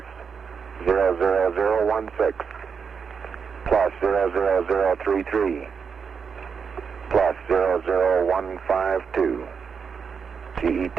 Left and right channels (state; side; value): quieter; left; 6.2 dB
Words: 00016 plus 00033 plus 00152. GET